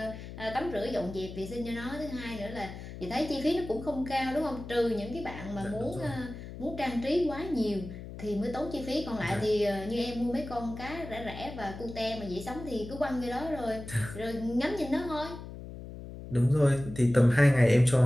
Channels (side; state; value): left; noise; hum, 11 dB below the sound